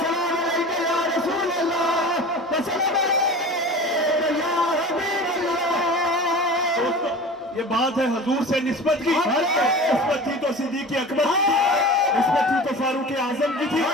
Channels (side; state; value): both; normal; correlation 0.36